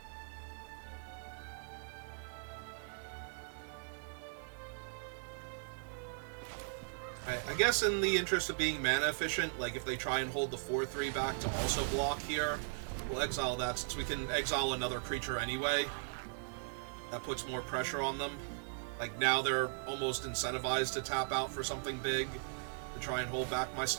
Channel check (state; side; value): silent; left; 52 dB below the other